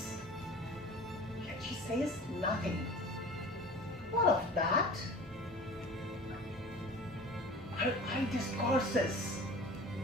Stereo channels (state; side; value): normal; both; correlation 0.40